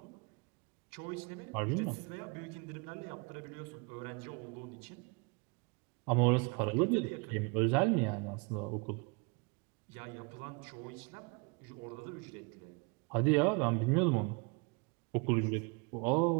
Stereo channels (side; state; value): left; quieter; 31.5 dB